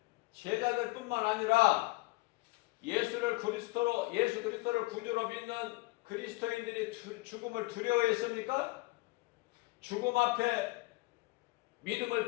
제자들뿐만 아니라 예수 그리스도를 구주로 믿는 그리스도인들이 죽음을 두려워했습니까? 죽음 앞에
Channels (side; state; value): right; quieter; 22.8 dB